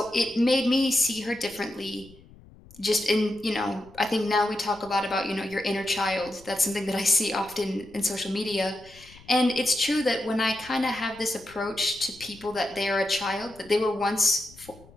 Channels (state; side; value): noise; left; rumble, 23 dB below the sound